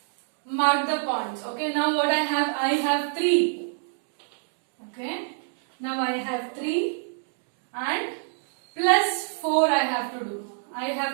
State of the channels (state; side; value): silent; left; digital silence